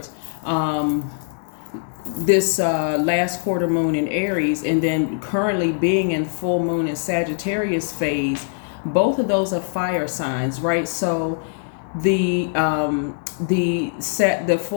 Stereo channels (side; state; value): right; silent; digital silence